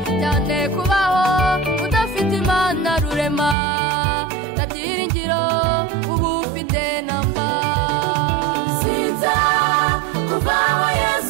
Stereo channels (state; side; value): drops out; left; at 3.6 s